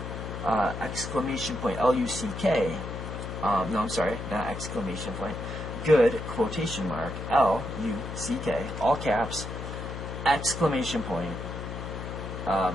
exclamation point, L-U-C-K. No, I'm sorry, not exclamation point. Good, quotation mark, L-U-C-K, all caps, exclamation point,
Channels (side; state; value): left; noise; hum, 7 dB below the sound